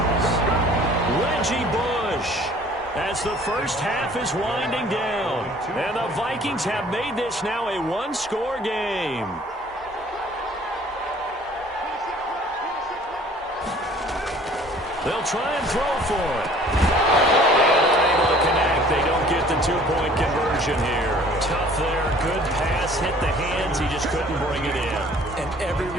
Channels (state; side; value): normal; both; correlation 0.53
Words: Reggie Bush. As the first half is winding down. And the Vikings have made this now a one-score game. They'll try and throw for it. And able to connect. They don't get the two-point conversion here. Tough there. Good pass. Hit the hands. He just couldn't bring it in. And every